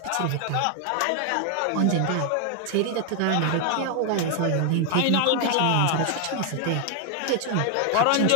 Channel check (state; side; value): different; both; correlation 0.00